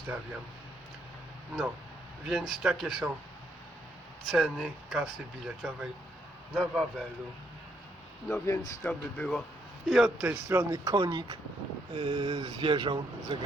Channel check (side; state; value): both; normal; correlation 0.73